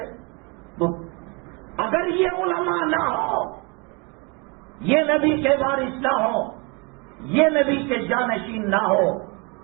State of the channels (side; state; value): left; quieter; 30.7 dB